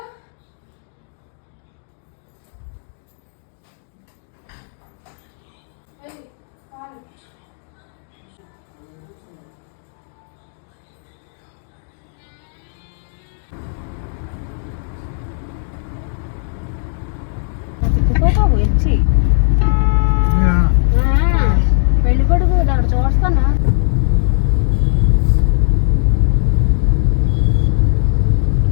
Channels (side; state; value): right; silent; digital silence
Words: వచ్చి పెళ్లి కొడుకు అక్కడ చూస్తానా.